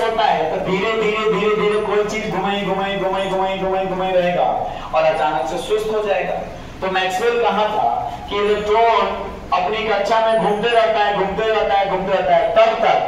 होता है तो धीरे धीरे कोई चीज घुमाई रहेगा और अचानक से सुस्त हो जाएगा। तो मैक्सवेल कहा था कि इलेक्ट्रॉन अपनी कक्षा में घूमते रहता है तब तक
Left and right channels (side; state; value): both; identical; correlation 1.00